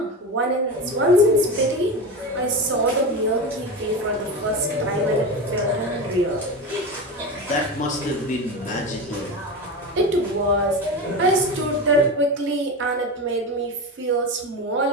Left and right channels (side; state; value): both; normal; correlation 0.22